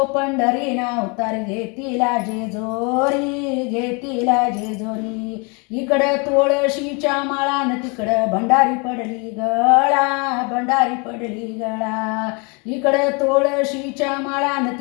पंढरी अवतार घेतीला जेजोरी घेतीला जेजोरी इकडं तुळशीच्या माळान तिकडं भंडारी पडली गळा भंडारी पडली गळा इकडं तुळशीच्या माळान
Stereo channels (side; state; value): right; quieter; 32.2 dB